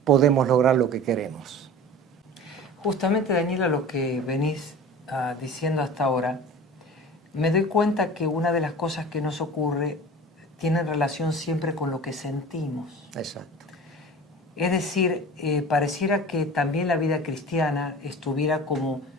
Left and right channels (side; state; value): both; normal; correlation 0.38